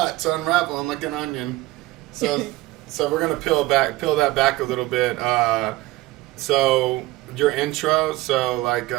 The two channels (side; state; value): left; quieter; 19.0 dB